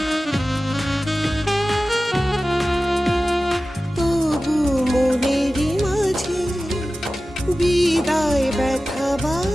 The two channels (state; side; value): normal; both; correlation 0.95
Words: তবু মনের মাঝে বিদায় ব্যথা